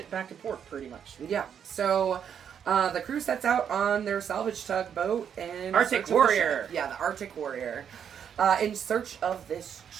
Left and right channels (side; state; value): left; quieter; 8.2 dB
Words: back to port, pretty much. Yeah. So the crew sets out on their salvage tugboat and Arctic Warrior. The Arctic Warrior, in search of this